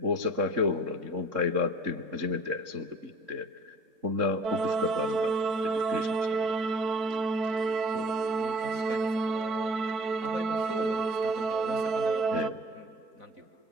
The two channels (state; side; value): late; left; 3.7 ms